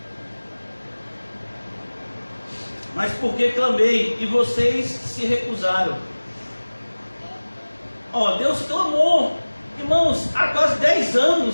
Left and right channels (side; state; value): both; inverted; correlation -1.00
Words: Mas porque clamei e vocês se recusaram. Deus clamou. Irmãos, há quase 10